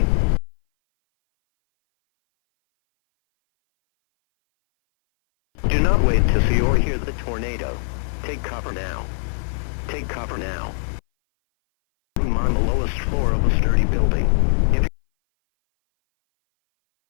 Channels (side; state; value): right; silent; 59 dB below the other